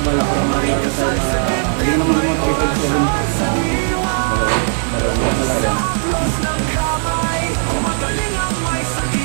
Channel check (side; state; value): left; silent; digital silence